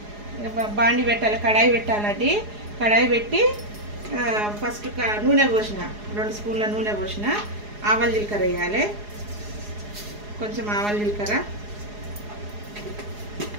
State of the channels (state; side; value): late; left; 4.8 ms